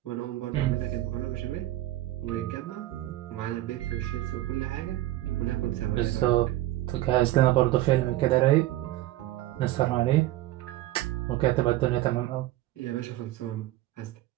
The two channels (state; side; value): quieter; left; 15.7 dB